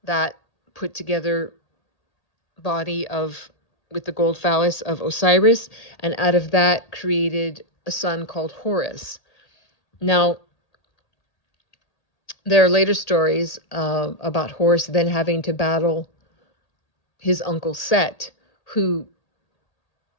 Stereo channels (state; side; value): late; right; 1.8 ms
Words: that put together body with the gold phallus of Osiris, and out of that created a son called Horus. Now, there are later stories about Horus then having to battle his uncle Set, who